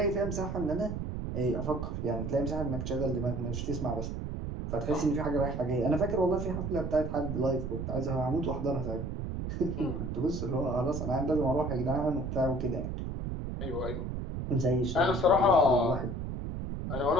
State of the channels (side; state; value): right; noise; rumble, 4 dB below the sound